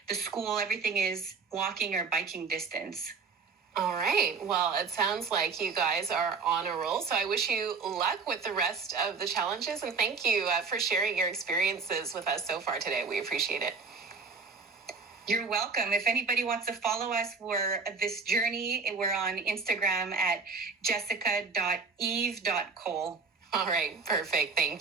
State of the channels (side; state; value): left; quieter; 4.8 dB